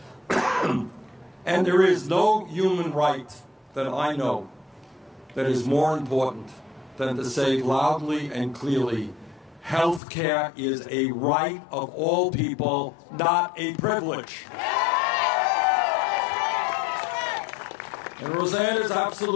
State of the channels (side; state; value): right; drops out; at 10.0 s